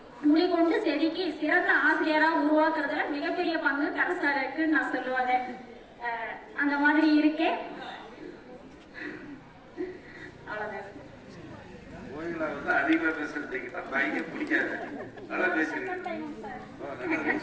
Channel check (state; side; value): identical; both; correlation 1.00